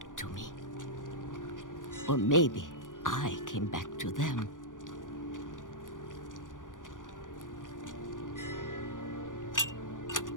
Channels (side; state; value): right; late; 0.88 ms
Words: to me. Or maybe I came back to them.